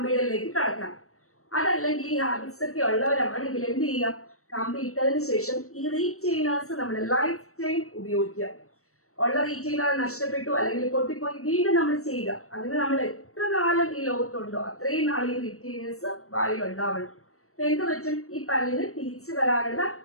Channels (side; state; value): right; late; 0.64 ms